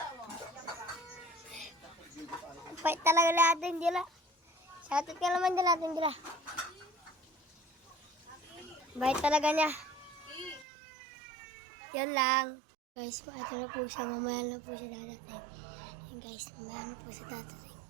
mo. Bait talaga na Ate Angela. Shoutout ka naman din Ate Angela. Bait talaga niya. Yan lang. Guys, ito na po siya. Mamaya na po siya dadating. Yan guys, mamaya na po siya dadating.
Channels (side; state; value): left; drops out; at 10.7 s